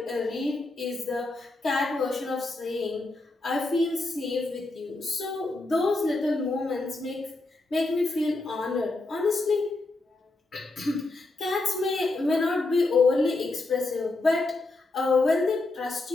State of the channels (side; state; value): right; quieter; 3.1 dB